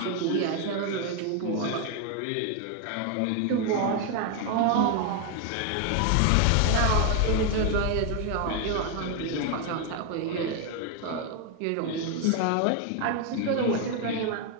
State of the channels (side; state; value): both; different; correlation 0.01